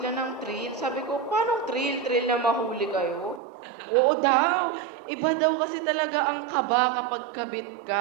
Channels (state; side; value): drops out; left; at 3.4 s